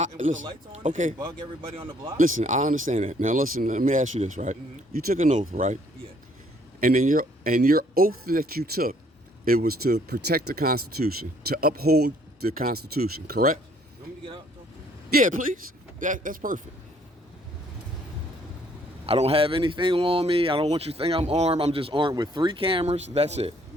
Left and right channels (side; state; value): both; normal; correlation 0.63